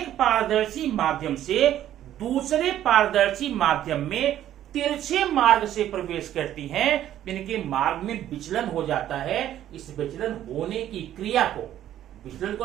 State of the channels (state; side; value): quieter; left; 11.9 dB